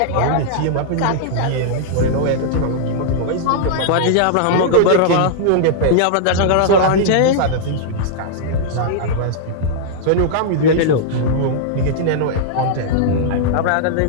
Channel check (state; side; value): different; both; correlation -0.01